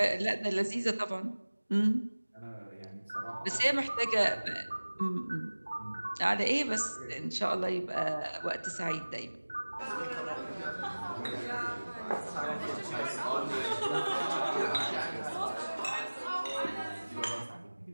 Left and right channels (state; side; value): inverted; both; correlation -1.00